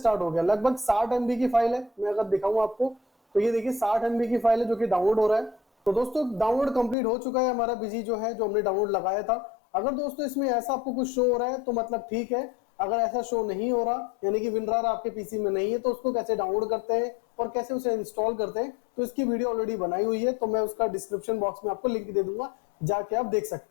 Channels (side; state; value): right; drops out; at 7.0 s